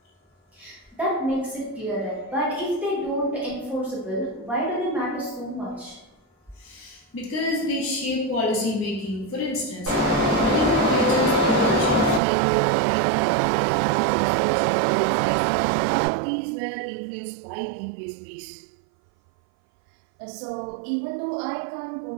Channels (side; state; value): left; drops out; at 12.2 s